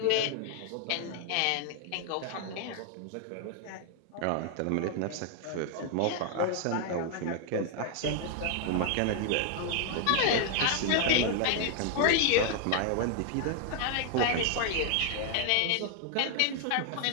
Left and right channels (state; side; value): different; both; correlation 0.00